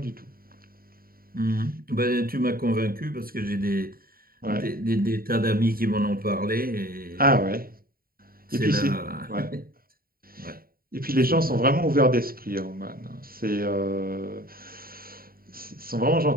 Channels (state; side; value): late; left; 0.43 ms